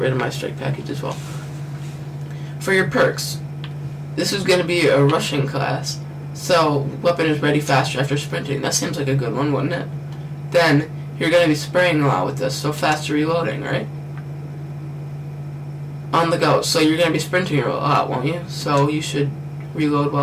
of my strike package as well. For your perks, this is going to be a rushing class. So weapon is ready faster after sprinting. That seems like a good one, wouldn't it? Then you're going to be spraying a lot with this, so faster reloading, right? On the go, so you're going to be sprinting a lot, won't you? So you should reload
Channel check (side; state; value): both; identical; correlation 1.00